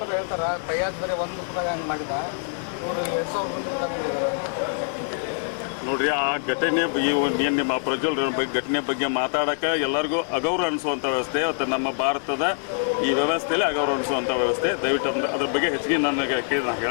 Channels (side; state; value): right; silent; digital silence